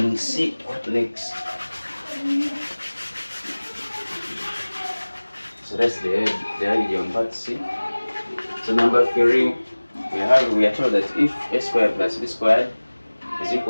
see what next. So that's the idea on part C. So number 3, we are told that if a squared plus b squared is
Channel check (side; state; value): both; inverted; correlation -1.00